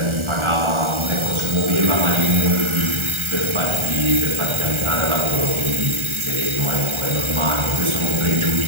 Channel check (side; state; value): left; late; 1.4 ms